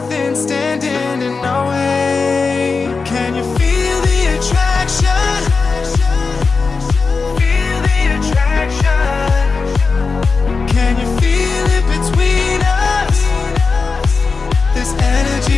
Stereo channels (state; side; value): quieter; right; 4.5 dB